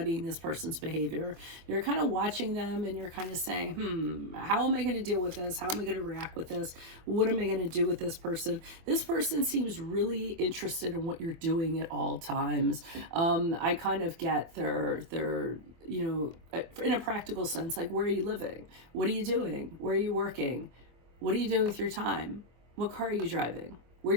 this person's behavior. You're kind of watching them and you're kind of saying, how am I going to deal with this? How am I going to react with this? What am I going to do with this person? This person seems really interested in what you're doing at all times. I kind of get their, you know, in a practical sense, like, where are you living? What are you doing? Where are you working? What are you doing with your time? What car are you driving?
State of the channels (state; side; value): late; left; 24 ms